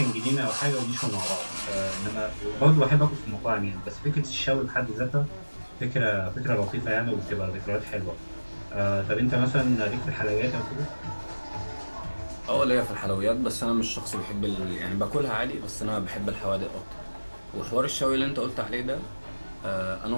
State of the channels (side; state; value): both; inverted; correlation -1.00